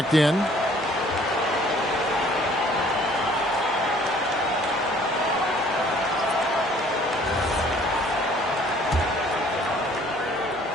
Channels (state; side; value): normal; both; correlation 0.57